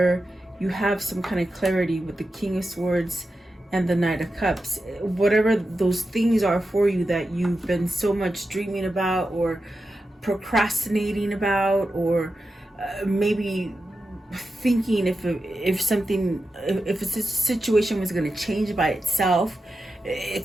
you have some kind of clarity with the King of Swords and the Knight of Cups. Whatever those things are for you that you've been so much dreaming about, or procrastinating about, or maybe thinking if a situation was going to change by itself.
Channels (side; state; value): both; normal; correlation 0.91